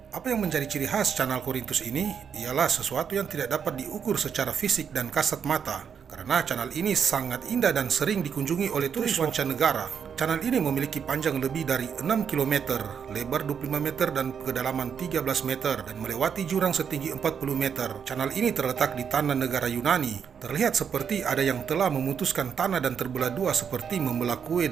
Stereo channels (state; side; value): quieter; left; 7.2 dB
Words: Apa yang menjadi ciri khas channel Korintus ini ialah sesuatu yang tidak dapat diukur secara fisik dan kasat mata. Karena channel ini sangat indah dan sering dikunjungi oleh turis mancanegara. Channel ini memiliki panjang lebih dari 6 km, lebar 25 meter dan kedalaman 13 meter dan melewati jurang setinggi 40 meter. Channel ini terletak di tanah negara Yunani. Terlihat seperti ada yang telah memutuskan tanah dan terbelah dua seperti membelah kue